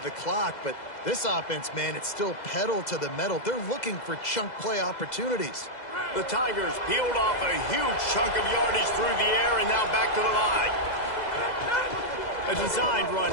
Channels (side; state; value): right; late; 2.0 ms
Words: the clock. But this offense, man, it's still pedal to the metal. They're looking for chunk play opportunities. The Tigers peeled off a huge chunk of yardage through the air and now back to the line. A designed run